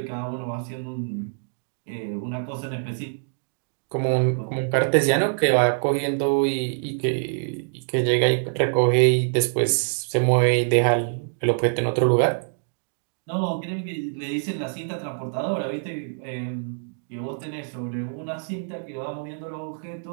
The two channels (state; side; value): silent; left; digital silence